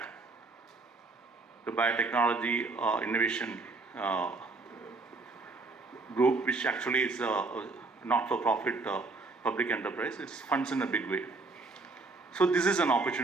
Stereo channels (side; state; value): left; quieter; 3.7 dB